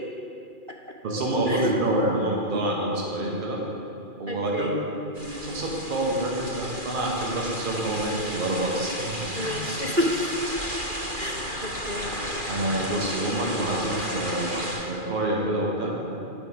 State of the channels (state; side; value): late; left; 2.4 ms